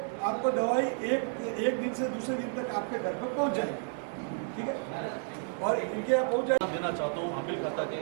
आपको दवाई एक दिन से दूसरे दिन तक आपके घर पर पहुंच जाएगी, ठीक है। और इनके यहाँ पहुँच जाए देना चाहता हूँ आमिर खाता के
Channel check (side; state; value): left; silent; 57 dB below the other